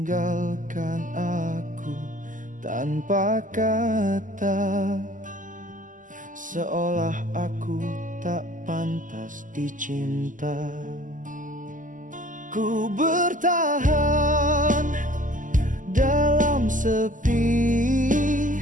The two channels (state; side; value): late; left; 0.38 ms